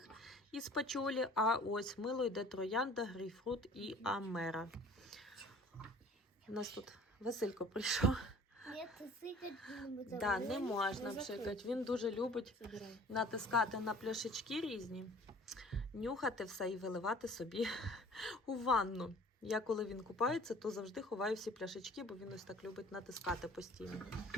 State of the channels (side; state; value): both; normal; correlation 0.49